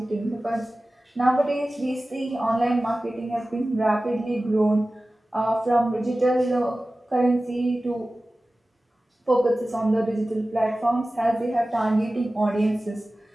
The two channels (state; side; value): normal; both; correlation 0.96